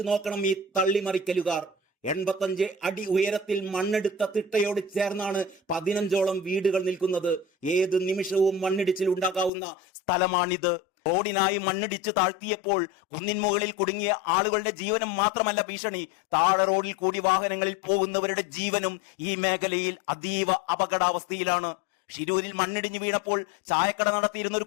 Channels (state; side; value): drops out; right; at 9.5 s